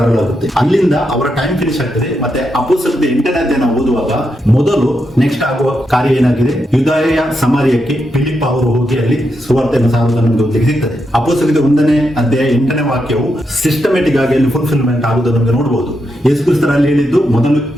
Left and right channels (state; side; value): normal; both; correlation 0.83